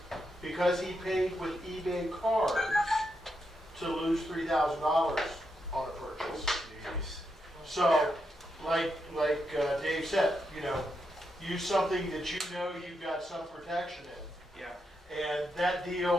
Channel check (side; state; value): both; normal; correlation 0.83